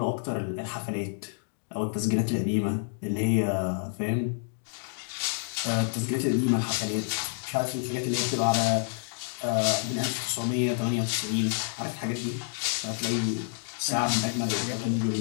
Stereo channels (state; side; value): silent; right; digital silence